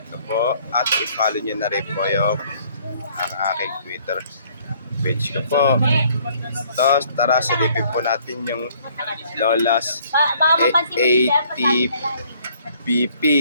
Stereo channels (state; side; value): inverted; both; correlation -0.61